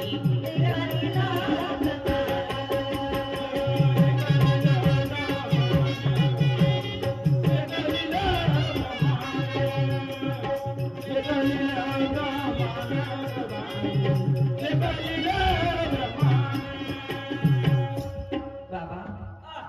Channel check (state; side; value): identical; both; correlation 1.00